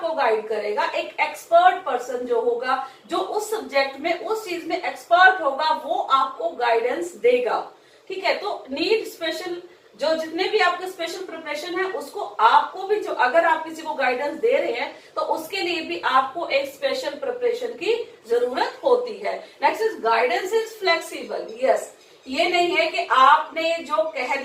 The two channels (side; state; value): both; identical; correlation 1.00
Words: गाइड करेगा, एक एक्सपर्ट पर्सन जो होगा, जो उस सब्जेक्ट में उस चीज में एक्सपर्ट होगा, वो आपको गाइडेंस देगा। ठीक है, तो नीड स्पेशल, जो जितने भी आपके स्पेशल प्रिपरेशन है उसको आपको भी, जो अगर आप किसी को गाइडेंस दे रहे हैं तो उसके लिए भी आपको एक स्पेशल प्रिपरेशन की जरूरत होती है। Next is guidance is flexible. Yes, ये नहीं है कि आपने जो कह